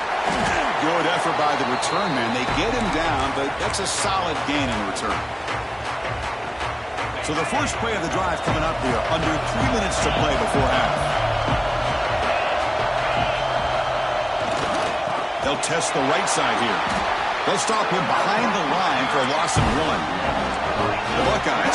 Good effort by the return man. They get him down, but that's a solid gain in return. So the first play of the drive coming up here, under 3 minutes to play before half. They'll test the right side here. They'll stop him behind the line for a loss of 1. The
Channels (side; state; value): both; identical; correlation 1.00